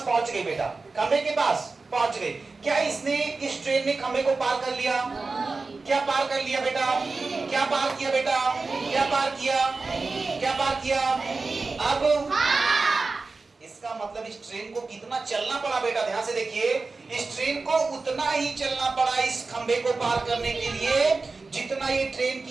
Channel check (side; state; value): left; quieter; 3.9 dB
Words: पहुंच गई बेटा, खंभे के पास पहुंच गई। क्या इसने, इस ट्रेन ने खंभे को पार कर लिया? क्या पार कर लिया बेटा? क्या पार किया बेटा? क्या पार किया? अब इसका मतलब इस ट्रेन को कितना चलना पड़ा बेटा? ध्यान से देखिए, इस ट्रेन को उतना ही चलना पड़ा इस खंभे को पार करने के लिए जितना ये ट्रेन